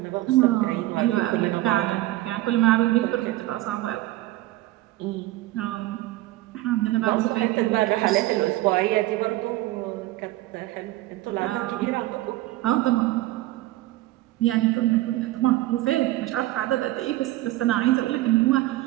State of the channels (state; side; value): quieter; left; 17.2 dB